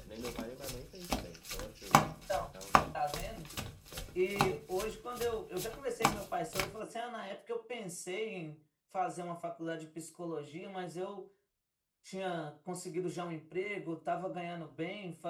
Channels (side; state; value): both; identical; correlation 1.00